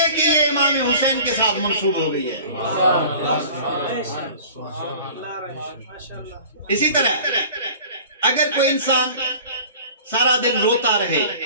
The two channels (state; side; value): inverted; both; correlation -0.43